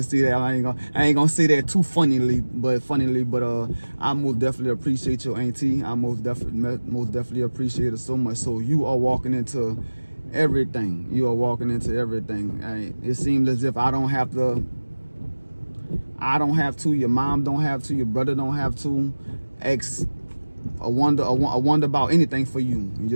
say that I ain't gonna say that too funnily, but I most definitely appreciate your auntie. I most definitely appreciate her so much. So you are walking into everything. It seems as if I don't have to. Your mom don't have to. Your brother don't have to. I wonder about anything for you.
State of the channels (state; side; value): inverted; both; correlation -1.00